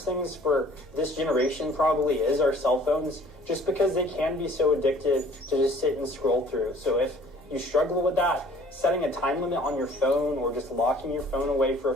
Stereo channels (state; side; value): normal; both; correlation 0.53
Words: things for this generation probably is our cell phones, just because they can be so addictive to just sit and scroll through. So if you struggle with that, setting a time limit on your phone or just locking your phone away for a